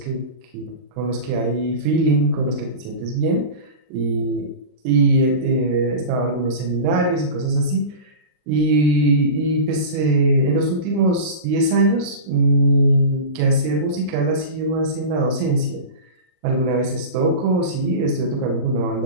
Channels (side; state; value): left; late; 39 ms